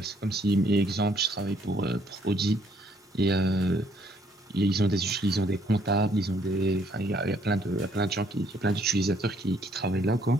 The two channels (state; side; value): normal; both; correlation 0.66